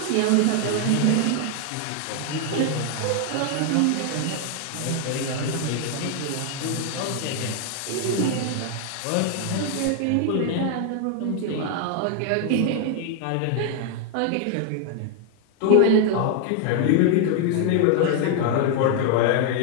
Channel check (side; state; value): both; different; correlation 0.00